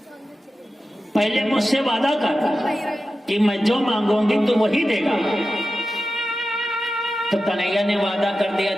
पहले मुझसे वादा कर कि मैं जो मांगूंगी तो वही देगा। तो कन्हैया ने वादा कर दिया,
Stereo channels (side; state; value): both; normal; correlation 0.93